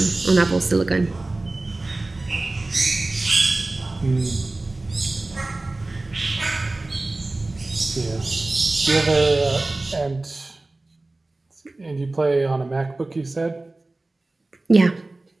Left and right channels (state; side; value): quieter; left; 3.0 dB